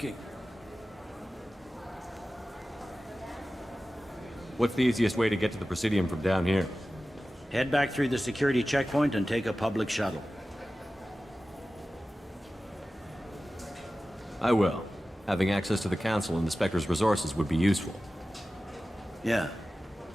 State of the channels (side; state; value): both; normal; correlation 0.95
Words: What's the easiest way to get to the Presidium from down here? Head back through the security checkpoint and take a public shuttle. I will. Having access to the Council and the Spectre's resources would be useful. Yeah.